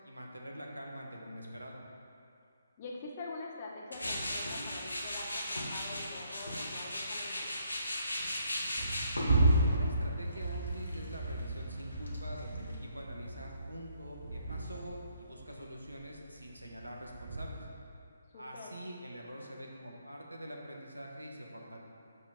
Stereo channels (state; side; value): inverted; both; correlation -0.71